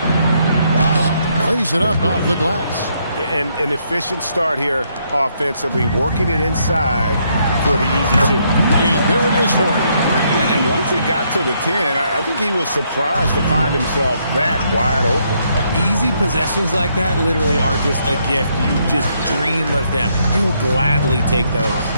Plays it up off the glass. An efficient start here offensively, working it inside for the easy two. And there it is for him. And once he got to the 10, I think he was surprised to find himself that wide open. Easy possessions like that literally are just a gift. You just dream of them. He'll gladly take those.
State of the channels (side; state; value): both; inverted; correlation -0.73